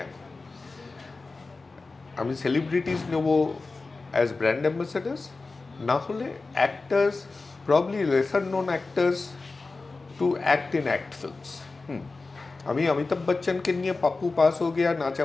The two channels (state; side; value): quieter; right; 3.7 dB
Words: আমি সেলিব্রিটিস নেব অ্যাজ ব্র্যান্ড অ্যাম্বাসেডার্স, না হলে actors, probably lesser known actors to act in act films. আমি অমিতাভ বচ্চনকে নিয়ে পাপ্পু পাস হো গিয়া